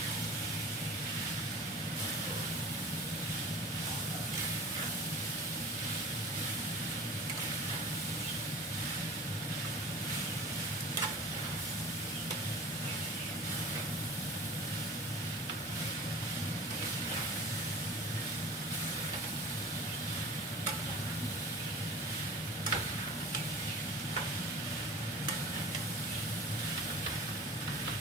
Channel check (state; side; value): normal; both; correlation 0.38